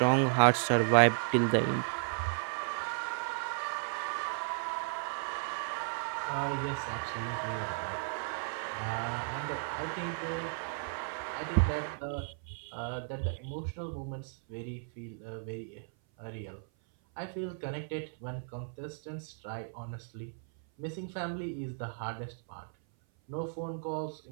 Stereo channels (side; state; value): left; silent; 55 dB below the other